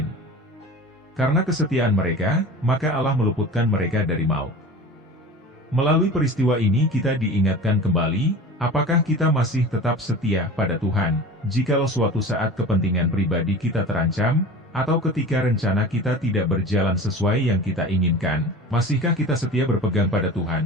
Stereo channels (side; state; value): both; normal; correlation 0.36